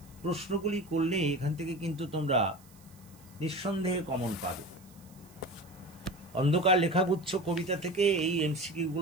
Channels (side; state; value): right; noise; hiss, 26 dB below the sound